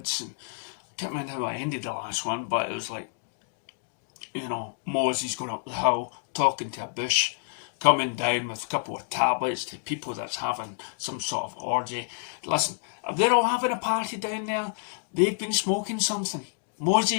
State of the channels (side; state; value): right; silent; digital silence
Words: and I can't remember how I ended the last one, but it was like, Moses going up the hill, talking to a bush, coming down with a couple of tablets to people that's having some sort of orgy. Listen, if they're all having a party down there, they've been smoking something.